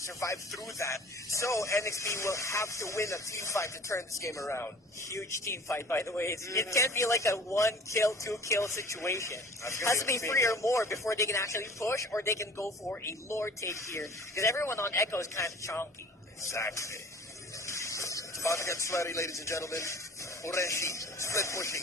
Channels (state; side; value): normal; both; correlation 0.46